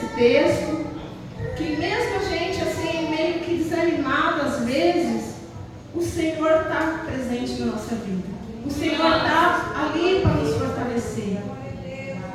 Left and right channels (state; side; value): identical; both; correlation 1.00